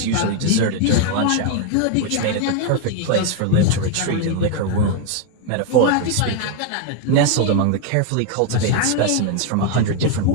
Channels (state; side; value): different; both; correlation 0.01